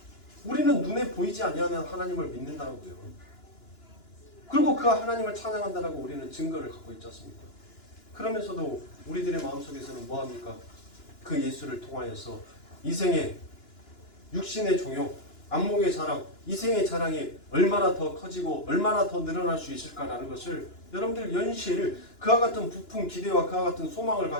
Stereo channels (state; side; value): late; right; 2.9 ms